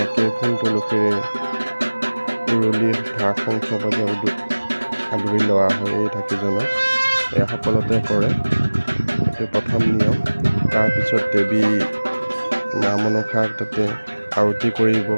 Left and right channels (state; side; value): inverted; both; correlation -1.00